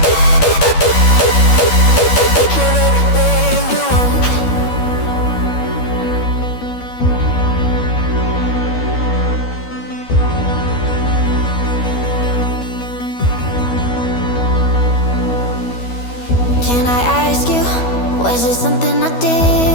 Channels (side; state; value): right; late; 12 ms